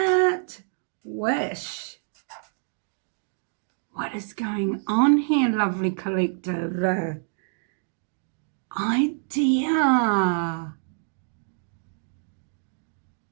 Wish. What is going on here, lovely collective? Idea.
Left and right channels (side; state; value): left; silent; digital silence